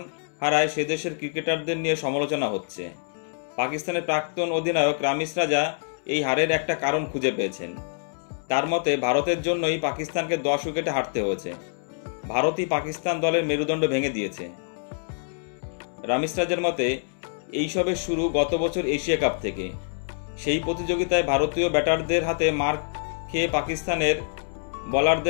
হারায় সে দেশের ক্রিকেটারদের নিয়ে সমালোচনা হচ্ছে। পাকিস্তানের প্রাক্তন অধিনায়ক রামিজ রাজা এই হারের একটা কারণ খুঁজে পেয়েছেন। তার মতে ভারতের জন্যই পাকিস্তানকে 10 উইকেটে হারতে হয়েছে। ভারতই পাকিস্তান দলের মেরুদণ্ড ভেঙে দিয়েছে। রামিজ রাজার মতে এইসবের শুরু গত বছর এশিয়া কাপ থেকে। সেই প্রতিযোগিতায় ভারতীয় ব্যাটারদের হাতে মার খেয়ে পাকিস্তানের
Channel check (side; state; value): right; silent; digital silence